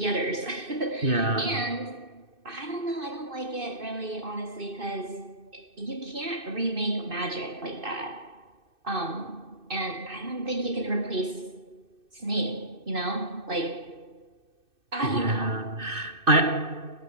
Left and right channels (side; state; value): left; late; 2.6 ms